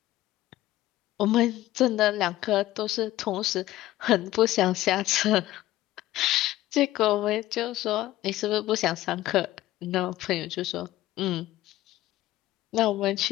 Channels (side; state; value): right; quieter; 15.6 dB